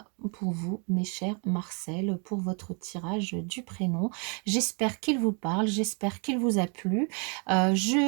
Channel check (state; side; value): quieter; left; 36.0 dB